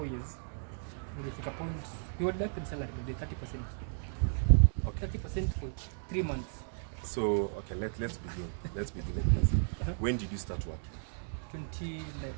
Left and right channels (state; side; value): silent; left; digital silence